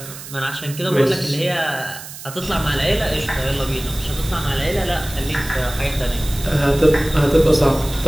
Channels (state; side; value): noise; right; hiss, 13 dB below the sound